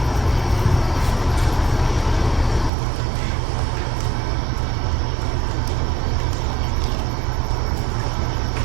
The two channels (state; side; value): drops out; left; at 2.7 s